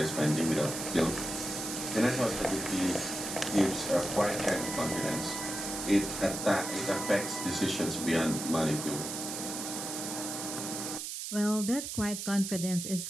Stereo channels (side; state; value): right; noise; hiss, 5 dB below the sound